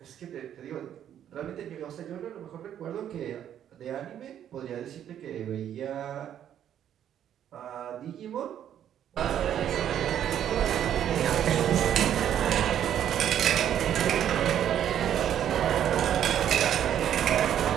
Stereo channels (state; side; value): quieter; left; 10.2 dB